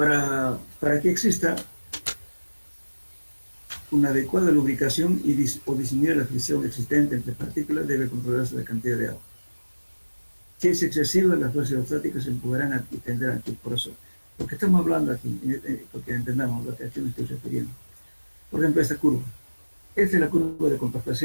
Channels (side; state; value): both; inverted; correlation -1.00